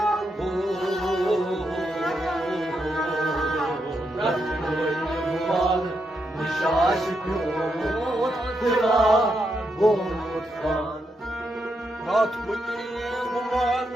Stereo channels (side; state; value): both; normal; correlation 0.82